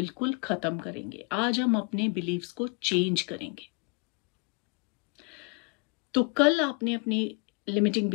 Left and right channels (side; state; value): right; quieter; 33.0 dB